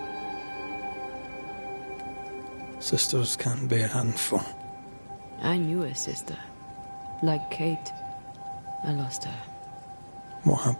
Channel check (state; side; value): inverted; both; correlation -1.00